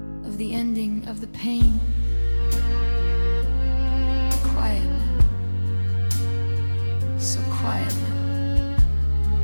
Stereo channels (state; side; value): inverted; both; correlation -1.00